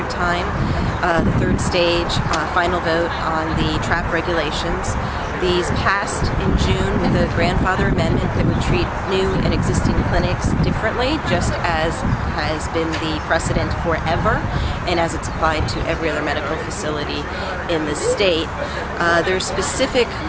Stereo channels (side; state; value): both; identical; correlation 1.00